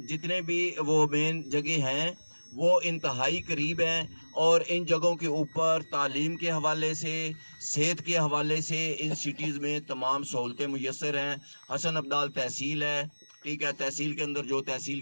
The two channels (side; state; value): both; inverted; correlation -1.00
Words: जितने भी वो मेन जगह हैं वो इंतहाई करीब हैं और इन जगहों के ऊपर तालीम के हवाले से, सेहत के हवाले से इन सिटीज़ में तमाम सहूलतें मुयस्सर हैं। हसन अब्दाल तहसील है, ठीक है, तहसील के अंदर जो तहसील